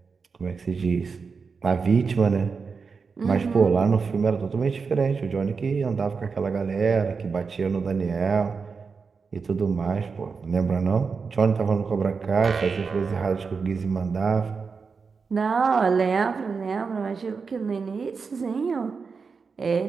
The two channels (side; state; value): left; quieter; 5.1 dB